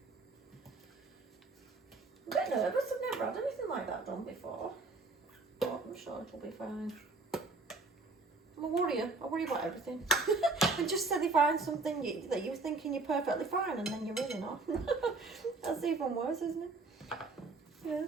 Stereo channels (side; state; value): left; quieter; 3.7 dB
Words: I'm a bit nervous, I've never had anything like that done before. But I'm sure it'll be fine. I'm a worrier, I worry about everything. And just say they find something that you're thinking you're perfectly fine and then you're really not. That's even worse, isn't it? Yeah.